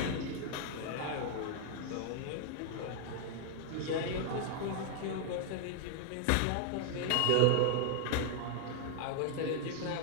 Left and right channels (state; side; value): different; both; correlation 0.00